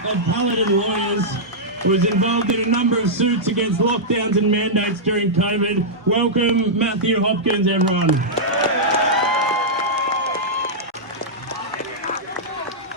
of Paladin Lawyers, who was involved in a number of suits against lockdowns and mandates during COVID. Welcome, Matthew Hopkins, everyone.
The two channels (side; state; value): both; normal; correlation -0.10